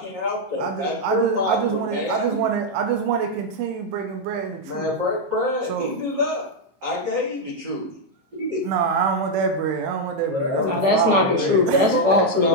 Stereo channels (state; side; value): late; left; 15 ms